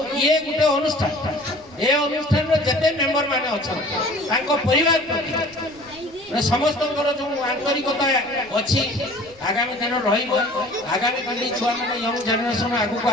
ये गोटे अनुष्ठान ये अनुष्ठान जिते मेम्बर मैंने अच्छा परिवार प्रति समस्त जो आंतरिकता अच्छी आगामी दिन रगामी कल छुआ मैंने यंग जेनेरेशन आगू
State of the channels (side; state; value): right; noise; rumble, 26 dB below the sound